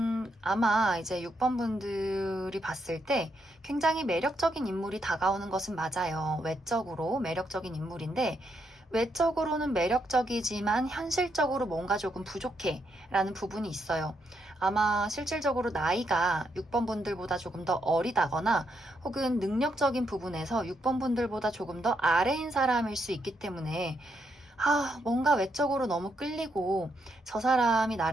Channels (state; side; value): normal; both; correlation 0.79